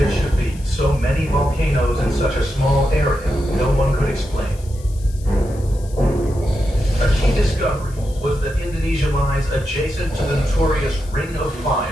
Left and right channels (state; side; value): noise; left; hiss, 22 dB below the sound